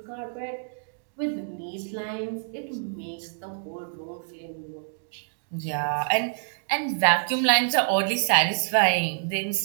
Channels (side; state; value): left; silent; digital silence